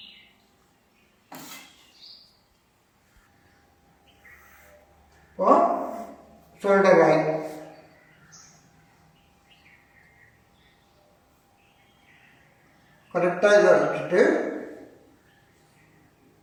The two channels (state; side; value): identical; both; correlation 1.00